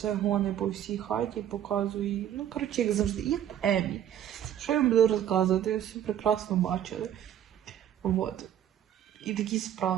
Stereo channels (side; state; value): left; quieter; 10.5 dB